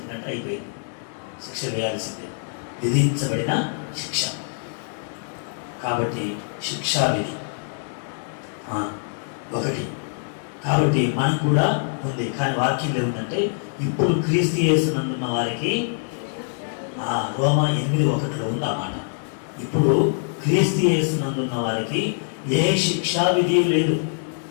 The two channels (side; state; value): right; silent; digital silence